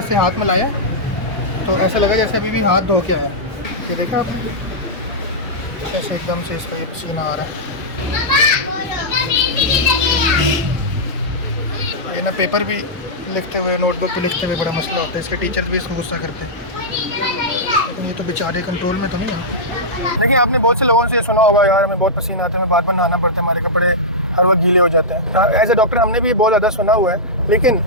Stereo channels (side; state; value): both; normal; correlation -0.11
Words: हाथ मिलाया तो ऐसा लगा जैसे अभी भी हाथ धो के आया। ये देखा आपने, ऐसे एकदम से इसका ये पसीना आ रहा है। ये ना पेपर भी लिखते हुए, नोटबुक पे लिखते हुए बड़ा मसला होता है। इसके टीचर्स भी इसको गुस्सा करते हैं, लेकिन ये तो बेचारे कंट्रोल में तो नहीं है। देखिए, आपने बहुत से लोगों से सुना होगा, यार हमें बहुत पसीना आता है, हमें बार बार नहाना पड़ता है, हमारे कपड़े हर वक्त गीले हो जाते हैं। एज ए डॉक्टर हमने भी बहुत ज़्यादा सुना हुआ है, लेकिन